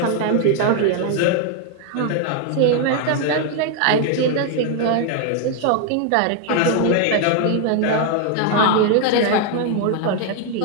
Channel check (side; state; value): both; different; correlation 0.00